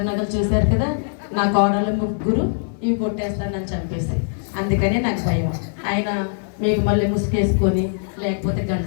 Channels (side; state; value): right; silent; 58 dB below the other